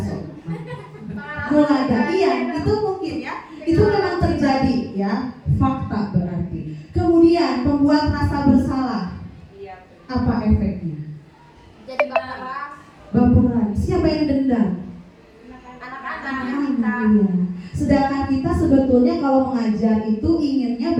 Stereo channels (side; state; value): both; identical; correlation 1.00